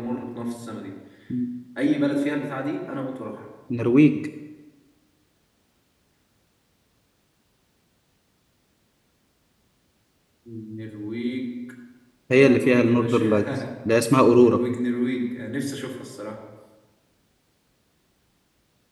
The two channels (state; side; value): identical; both; correlation 1.00